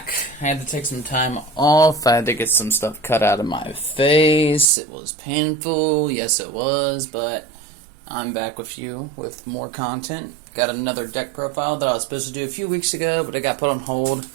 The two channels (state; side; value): drops out; left; at 4.7 s